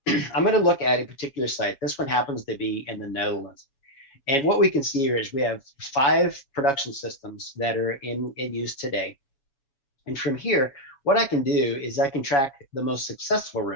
going to look at a particular site. This one happens to be in the Netherlands. And what we can see here is we have 5 production systems that are in use today. And from here, what I can do is I can track the most successful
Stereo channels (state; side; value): late; right; 7.2 ms